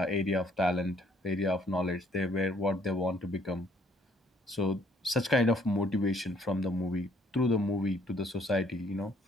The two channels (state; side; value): normal; both; correlation 0.63